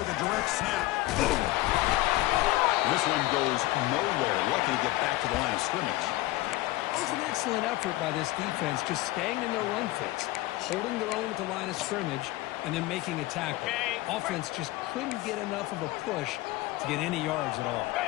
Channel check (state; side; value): quieter; right; 18.4 dB